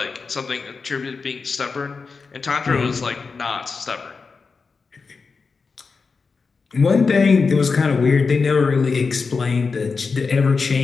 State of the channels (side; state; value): right; quieter; 4.7 dB